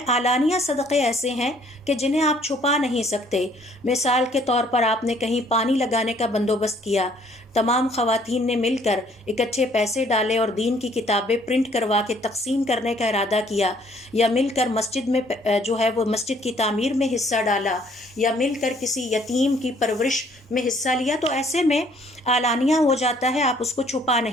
علانیہ صدقے ایسے ہیں کہ جنہیں آپ چھپا نہیں سکتے۔ مثال کے طور پر آپ نے کہیں پانی لگانے کا بندوبست کیا، تمام خواتین نے مل کر اکٹھے پیسے ڈالے اور دین کی کتابیں پرنٹ کروا کے تقسیم کرنے کا ارادہ کیا، یا مل کر مسجد میں جو ہے وہ مسجد کی تعمیر میں حصہ ڈالا، یا مل کر کسی یتیم کی پرورش میں حصہ لیا، تو ایسے میں علانیہ ہو جاتا ہے، آپ اس کو چھپا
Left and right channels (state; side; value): normal; both; correlation 0.61